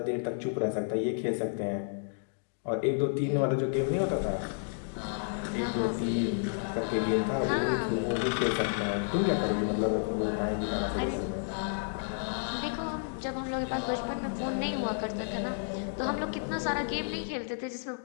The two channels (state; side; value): silent; right; digital silence